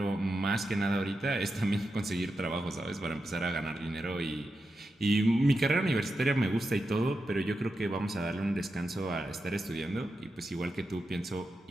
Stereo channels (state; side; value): normal; both; correlation 0.88